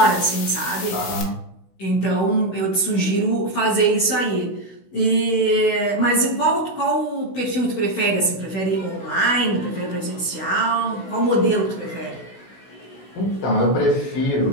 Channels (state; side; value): late; right; 16 ms